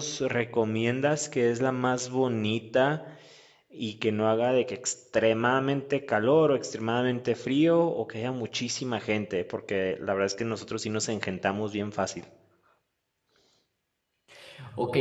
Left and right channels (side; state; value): both; identical; correlation 1.00